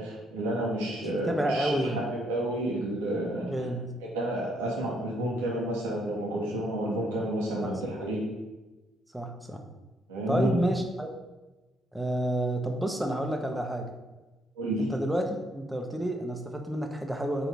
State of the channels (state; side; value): normal; both; correlation 0.72